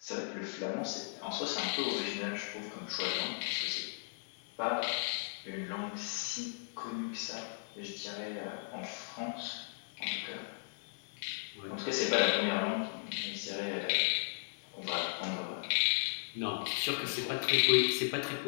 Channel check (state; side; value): silent; right; 54 dB below the other